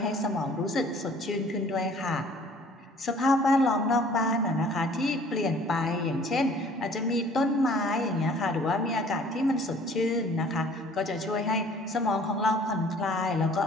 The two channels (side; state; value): both; normal; correlation 0.53